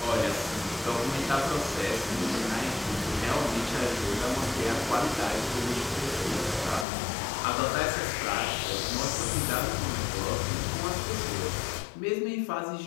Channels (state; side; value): drops out; right; at 6.9 s